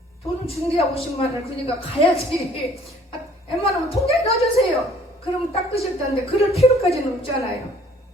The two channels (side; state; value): both; normal; correlation 0.56